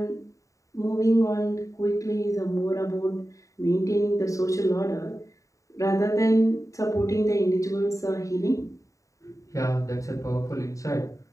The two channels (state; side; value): late; right; 0.16 ms